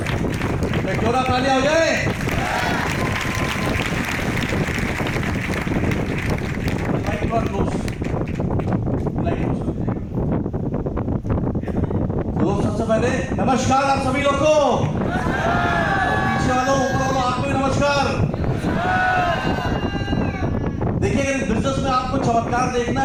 क्यों ना तालियां हो जाए। तो सबसे पहले नमस्कार आप सभी लोग को, पीछे वालों ऊपर वालों आपको भी नमस्कार। देखिए अगर इस बिजनेस में आपको चमत्कार देखना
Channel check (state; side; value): identical; both; correlation 1.00